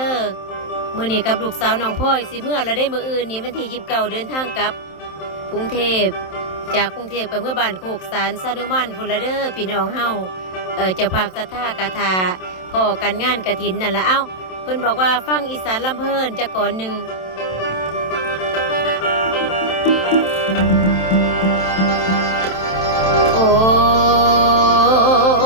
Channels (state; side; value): late; right; 27 ms